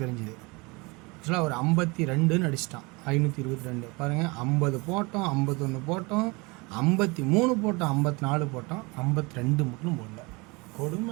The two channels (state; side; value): quieter; left; 26.5 dB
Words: தெரிஞ்சுது. ஆக்சுவலாக ஒரு 52ன்னு அடிச்சிட்டான். 522 பாருங்கள். 50 போட்டோம், 51 போட்டோம், 53 போட்டோம், 54 போட்டோம், 52 மட்டும் போடல.